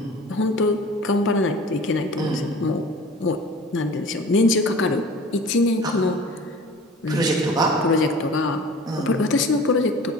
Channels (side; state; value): both; normal; correlation 0.42